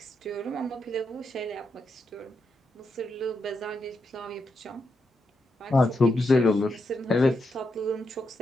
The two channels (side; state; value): both; normal; correlation 0.83